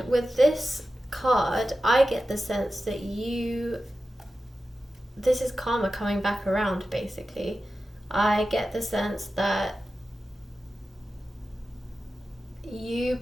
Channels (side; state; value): both; normal; correlation 0.93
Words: with this card I get the sense that this is karma coming back around basically. I get the sense that you